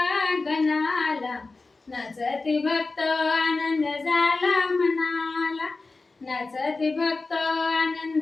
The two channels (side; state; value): right; quieter; 3.7 dB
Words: गणाला, नाचती भक्त आनंद झाला मनाला, नाचती भक्त